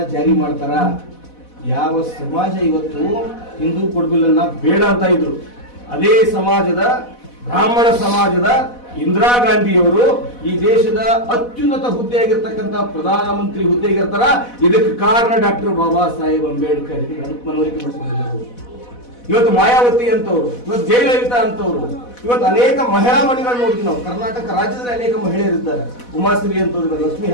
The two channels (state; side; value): late; right; 4.1 ms